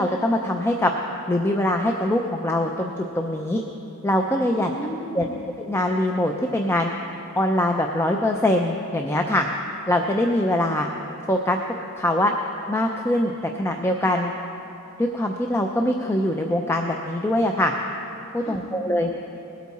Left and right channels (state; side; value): normal; both; correlation 0.64